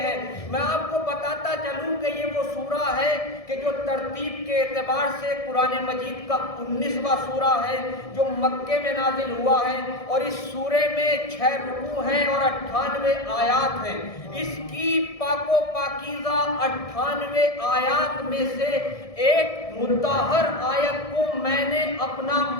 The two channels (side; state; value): right; late; 1.7 ms